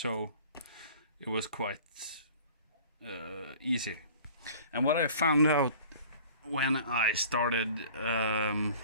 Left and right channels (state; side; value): inverted; both; correlation -0.45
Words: it was quite easy. And what I found out when I started